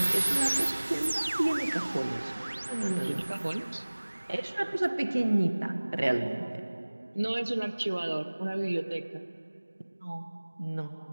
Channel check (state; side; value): inverted; both; correlation -1.00